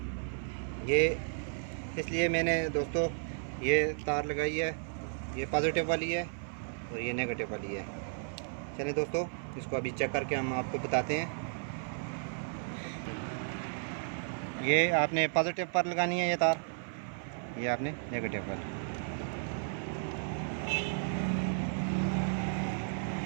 ये इसलिए मैंने दोस्तों ये तार लगाई है। ये पॉजिटिव वाली है और ये नेगेटिव वाली है। चलिए दोस्तों, इसको अभी चेक करके हम आपको बताते हैं। ये आपने पॉजिटिव पर लगानी है ये तार, ये आपने नेगेटिव पर।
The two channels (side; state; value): left; silent; 55 dB below the other